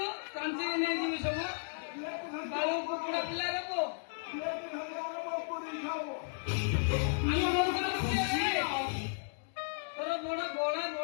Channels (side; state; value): right; silent; digital silence